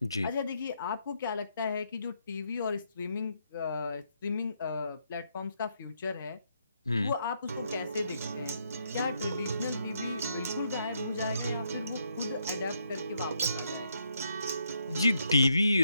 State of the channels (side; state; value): both; inverted; correlation -0.76